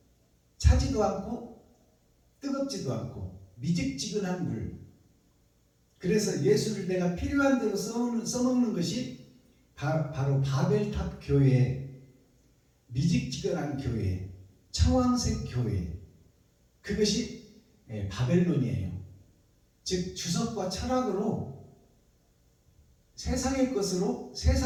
차지도 않고 뜨겁지도 않고 미직지근한 물. 그래서 예수를 내가 필요한 대로 써먹는 것이 바로 바벨탑 교회, 미직지근한 교회, 청황색 교회, 그것이 바벨론이에요. 즉 주석과 철학으로 세상의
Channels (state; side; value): identical; both; correlation 1.00